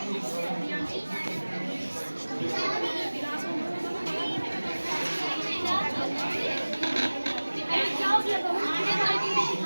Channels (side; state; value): both; inverted; correlation -1.00